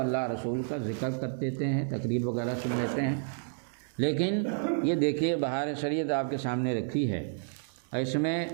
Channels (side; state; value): left; silent; digital silence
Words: رسول کا ذکر کر دیتے ہیں، تقریر وغیرہ سن لیتے ہیں۔ لیکن یہ دیکھیے بہار شریعت آپ کے سامنے رکھی ہے، اس میں